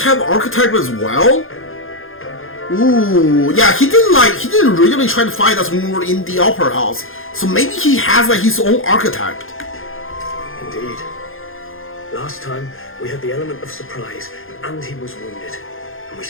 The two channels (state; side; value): late; right; 0.60 ms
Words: archetype as well? Ooh, yeah, he didn't really try to fight us when we were in the Opera House. So maybe he has like his own archetype. Indeed. Last time, we had the element of surprise, and he was wounded. And we